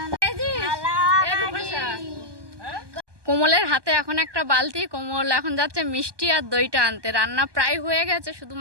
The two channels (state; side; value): late; left; 1.2 ms